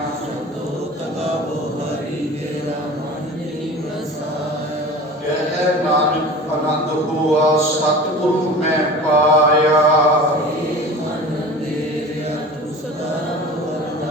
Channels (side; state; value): both; normal; correlation 0.37